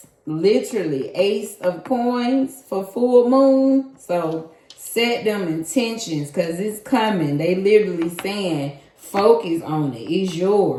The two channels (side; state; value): both; identical; correlation 1.00